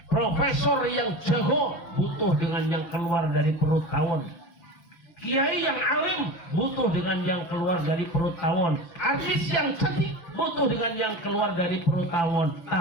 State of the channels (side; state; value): right; late; 6.4 ms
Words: Profesor yang jago butuh dengan yang keluar dari perut tawon. Kiai yang alim butuh dengan yang keluar dari perut tawon. Artis yang cantik butuh dengan yang keluar dari perut tawon.